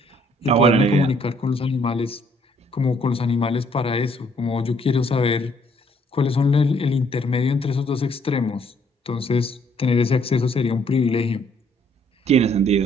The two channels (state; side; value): normal; both; correlation 0.66